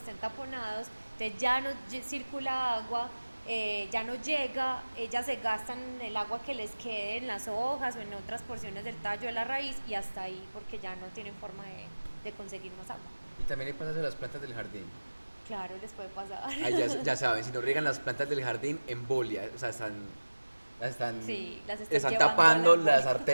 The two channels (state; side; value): inverted; both; correlation -1.00